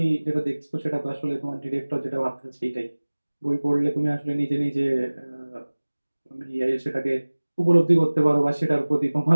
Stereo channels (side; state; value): both; inverted; correlation -1.00